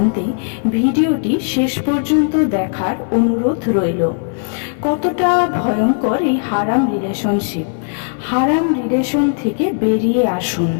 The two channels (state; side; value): silent; right; 59 dB below the other